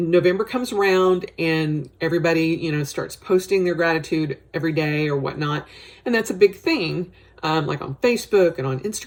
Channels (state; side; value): identical; both; correlation 1.00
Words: comes around and everybody, starts posting their gratitude every day or whatnot. And that's a big thing, like on Facebook and on